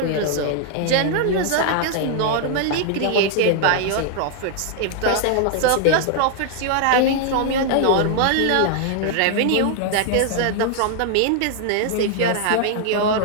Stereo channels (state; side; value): different; both; correlation 0.00